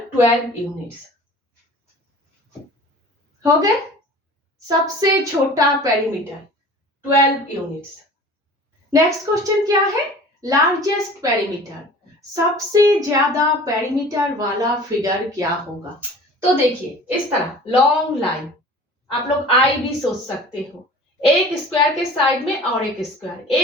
12 यूनिट्स हो गए। सबसे छोटा पेरीमीटर 12 यूनिट्स। नेक्स्ट क्वेश्चन क्या है? लार्जेस्ट पेरीमीटर, सबसे ज्यादा पेरीमीटर वाला फिगर क्या होगा? तो देखिए, इस तरह लॉन्ग लाइन, आप लोग आई भी सोच सकते हो, एक स्क्वायर के साइड में और एक स्क्वायर,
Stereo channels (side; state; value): both; normal; correlation 0.43